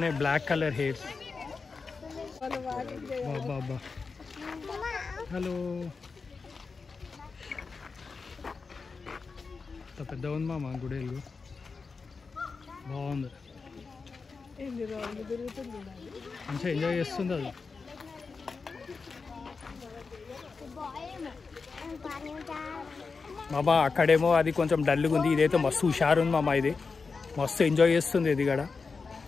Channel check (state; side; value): quieter; right; 4.7 dB